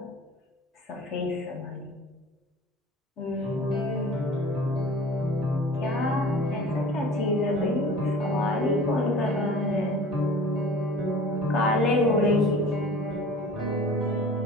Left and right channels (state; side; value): normal; both; correlation 0.43